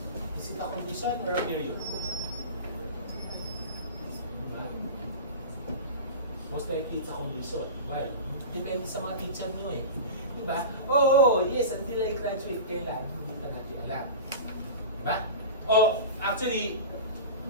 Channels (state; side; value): inverted; both; correlation -0.30